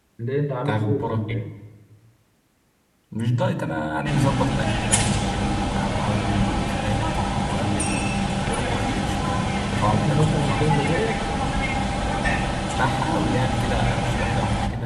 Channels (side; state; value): both; identical; correlation 1.00